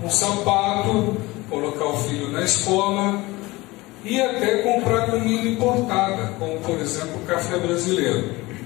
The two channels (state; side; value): quieter; right; 21.1 dB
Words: um sapato, colocar o filho na escola e até comprar comida importada, como por exemplo o café brasileiro,